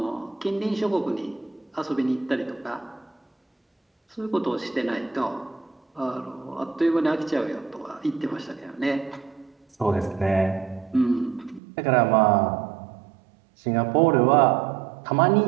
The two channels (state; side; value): drops out; left; at 11.6 s